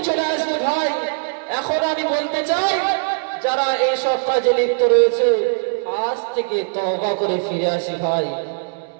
চলে আসবে ভাই। এখন আমি বলতে চাই, যারা এই সব কাজে লিপ্ত রয়েছে, আজ থেকে তওবা করে ফিরে আসি ভাই।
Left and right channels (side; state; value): left; silent; digital silence